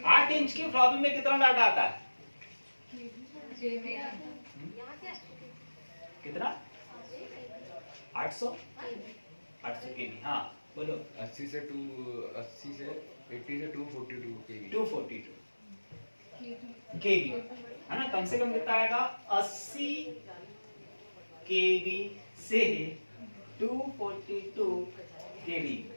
8 इंच की फ्लॉपी में कितना डाटा आता है? कितना? 800 केबी। हाँ बोलो। 80 से 80 से 242 केबी। 242 केबी, है ना। कम से कम कितना आएगा? 80 केबी से 242 केबी।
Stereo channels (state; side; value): inverted; both; correlation -1.00